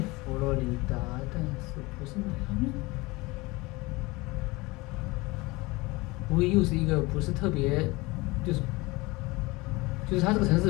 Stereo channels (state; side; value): quieter; right; 23.1 dB